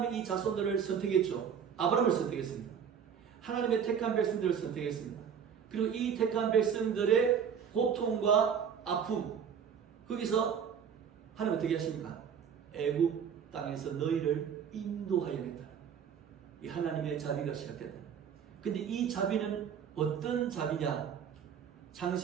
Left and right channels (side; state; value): left; quieter; 7.6 dB